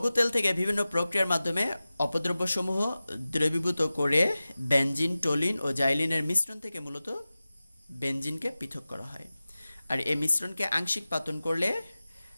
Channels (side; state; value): both; inverted; correlation -0.96